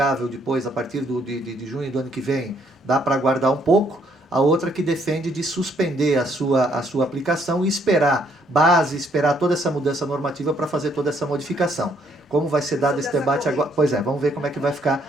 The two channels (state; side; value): normal; both; correlation 0.68